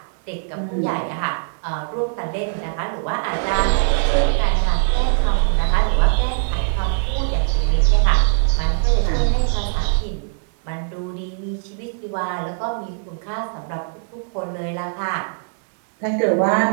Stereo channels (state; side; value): silent; left; digital silence